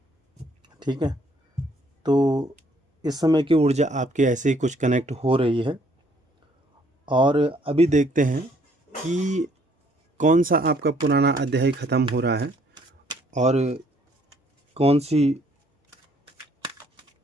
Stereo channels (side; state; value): both; normal; correlation 0.64